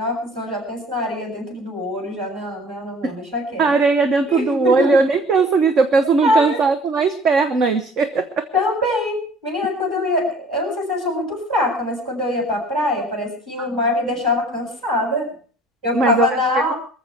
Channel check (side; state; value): both; normal; correlation 0.50